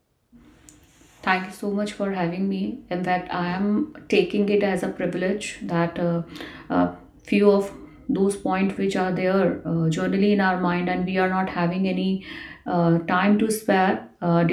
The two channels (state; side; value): identical; both; correlation 1.00